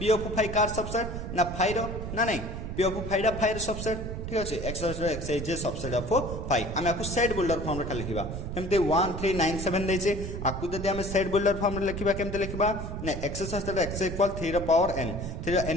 ऑफ 5 कार सबसेट ना 5 रो ना नहीं p ऑफ 5 दा 5 रो सबसेट ठीक अछि x x is subset of 5 हम आको सेट बिल्डर फॉर्म रे खाली लिखिबा केमते 1397 दैछि आको जदी हम सेट बिल्डर फॉर्म रे लिखिबा केमते लिखिबा ना x सस्टेड x इक्वल 3 रो पावर n 3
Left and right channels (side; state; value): right; noise; rumble, 6 dB below the sound